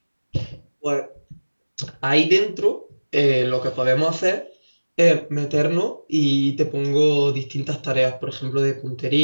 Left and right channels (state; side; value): inverted; both; correlation -1.00